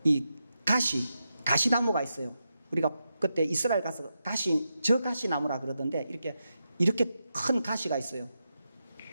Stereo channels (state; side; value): inverted; both; correlation -0.87